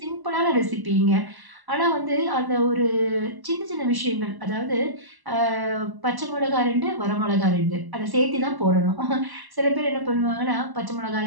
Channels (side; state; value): left; late; 1.0 ms